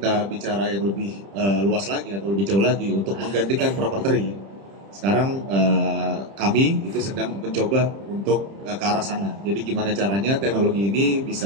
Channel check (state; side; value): late; left; 30 ms